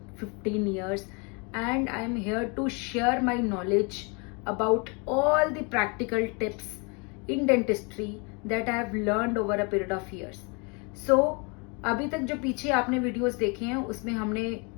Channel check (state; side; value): quieter; right; 32.2 dB